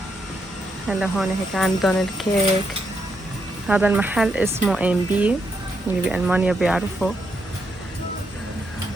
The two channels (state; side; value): normal; both; correlation 0.79